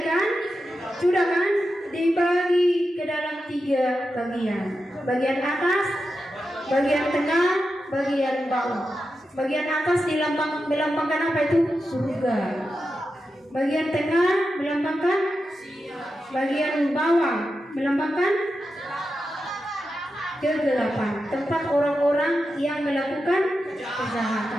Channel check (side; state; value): both; normal; correlation 0.89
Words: kan? Sudah kan? Dibagi ke dalam 3 bagian. Bagian atas, bagian tengah, bagian bawah. Bagian atas melambangkan apa itu? Surga. Bagian tengah melambangkan, bagian bawah melambangkan kegelapan, tempat orang-orang yang melakukan